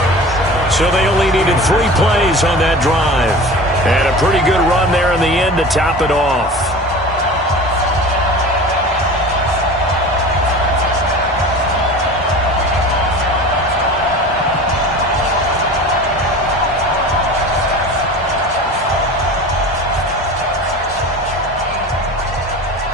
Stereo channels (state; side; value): normal; both; correlation 0.36